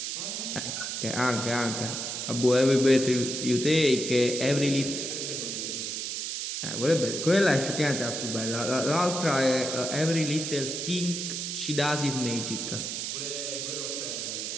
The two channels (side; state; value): right; noise; hiss, 4 dB below the sound